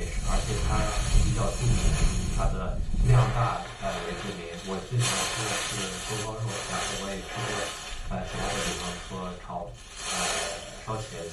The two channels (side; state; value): both; identical; correlation 1.00